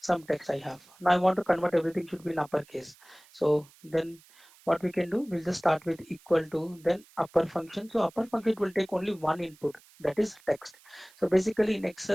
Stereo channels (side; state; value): right; noise; hiss, 27 dB below the sound